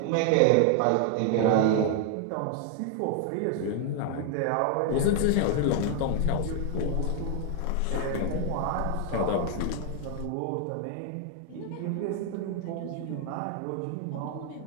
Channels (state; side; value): different; both; correlation 0.00